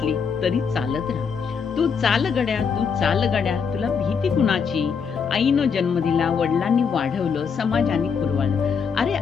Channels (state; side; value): quieter; right; 6.2 dB